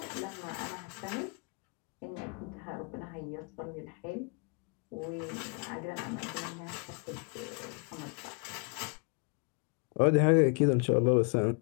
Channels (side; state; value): right; quieter; 35.8 dB